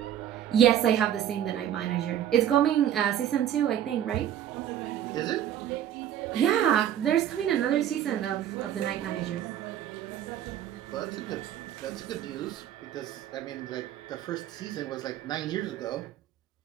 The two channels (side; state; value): left; quieter; 10.7 dB